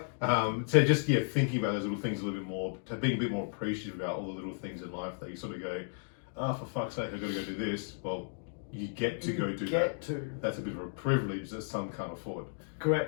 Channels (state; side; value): silent; right; digital silence